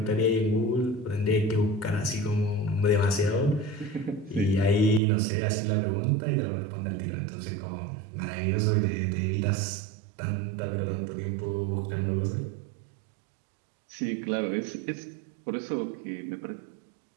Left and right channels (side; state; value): left; drops out; at 5.0 s